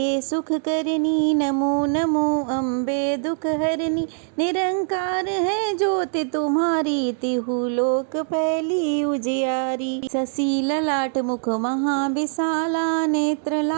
सुख करनी, नमो नमो अम्बे दुख हरनी। निरंकार है ज्योति तुम्हारी, तिहु लोक फैली उजियारी। शशि ललाट मुख महाविशाला, नेत्र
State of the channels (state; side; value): silent; left; 64 dB below the other